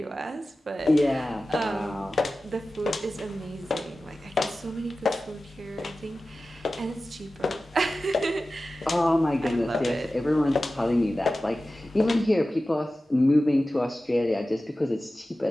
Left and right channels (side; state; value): both; normal; correlation 0.95